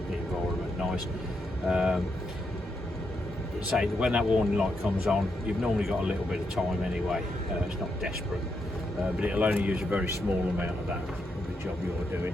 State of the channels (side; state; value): both; normal; correlation 0.82